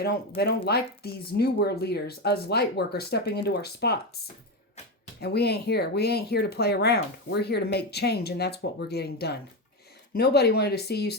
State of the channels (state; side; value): normal; both; correlation 0.14